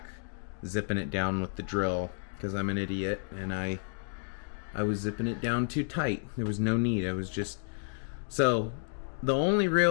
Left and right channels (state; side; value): silent; right; digital silence